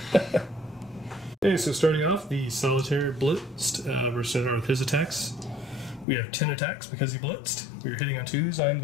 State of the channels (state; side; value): drops out; right; at 6.1 s